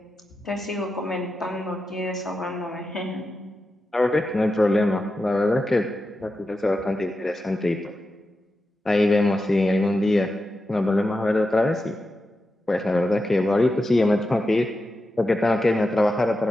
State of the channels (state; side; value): normal; both; correlation 0.90